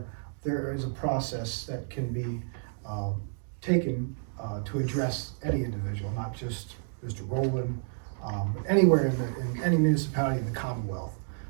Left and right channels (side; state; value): left; silent; digital silence